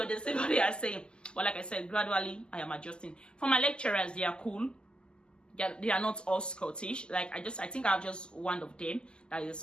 understand what they are saying. But like I said, gradually I am adjusting. For my lecturers, they are cool. They are not all Scottish. Like I think I have just one of them that is a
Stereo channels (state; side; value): late; right; 0.048 ms